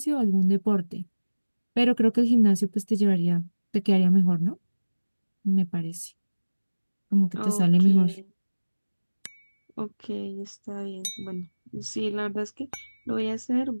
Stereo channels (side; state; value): both; inverted; correlation -1.00